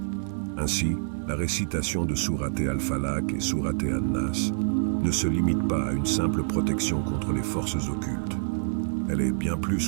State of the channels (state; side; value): silent; left; digital silence